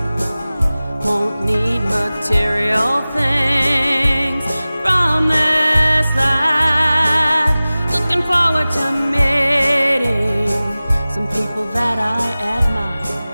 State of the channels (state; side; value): inverted; both; correlation -0.97